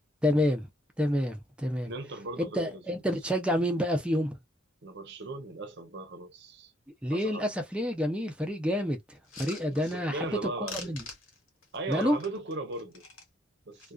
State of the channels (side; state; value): both; normal; correlation 0.70